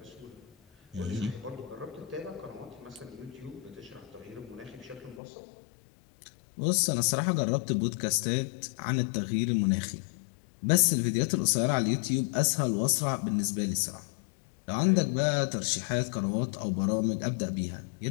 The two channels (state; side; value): drops out; right; at 5.2 s